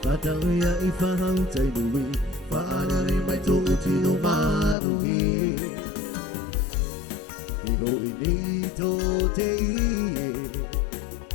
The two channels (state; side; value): drops out; right; at 4.8 s